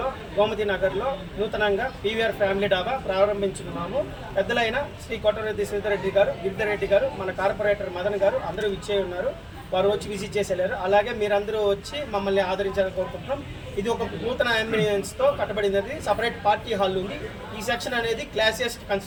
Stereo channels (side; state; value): both; identical; correlation 1.00